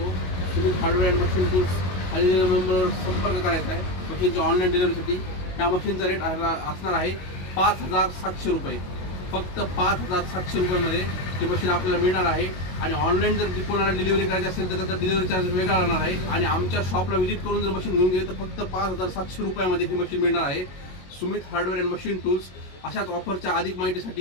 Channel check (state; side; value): late; right; 22 ms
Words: तुम्ही हार्डवेअर अँड मशीन टूल्स खाली नंबरवर संपर्क करायचा आहे मशीनच्या ऑनलाईन डिलिव्हरीसाठी। त्या मशीनचा रेट असणार आहे 5700 रुपये। फक्त 5700 रुपयामध्ये ही मशीन आपल्याला मिळणार आहे। आणि ऑनलाईन जर कोणाला डिलिव्हरी करायची असेल तर त्याचा डिलिव्हरी चार्ज वेगळा राहणार आहे। आणि आमच्या शॉपला व्हिजिट करून जर मशीन घेऊन गेले तर फक्त 5700 रुपयामध्ये ही मशीन मिळणार आहे। Sumit hardware and machine tools अशाच ऑफरच्या अधिक